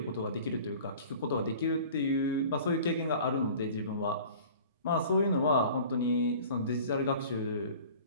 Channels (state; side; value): inverted; both; correlation -0.44